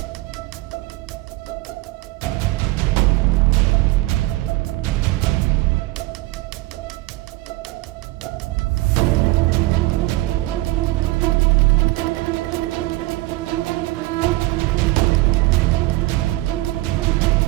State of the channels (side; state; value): left; quieter; 19.7 dB